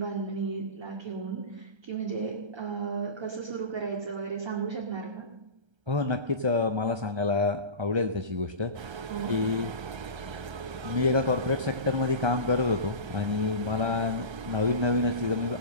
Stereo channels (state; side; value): late; left; 1.3 ms